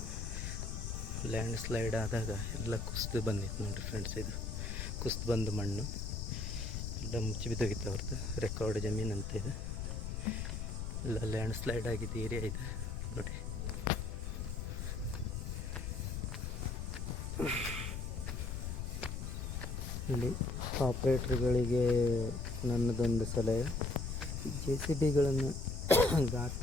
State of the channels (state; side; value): noise; left; rumble, 4 dB below the sound